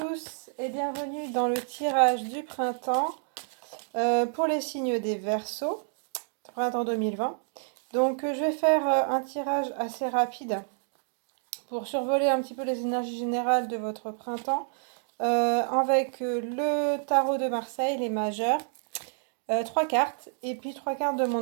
et bienvenue dans le tirage du printemps pour les signes des Verseaux, printemps 2020. Donc je vais faire un tirage assez rapide pour survoler un petit peu les énergies générales de votre printemps avec le tarot de Marseille, les majeurs, 3 cartes et puis 3 cartes de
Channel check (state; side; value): silent; left; 59 dB below the other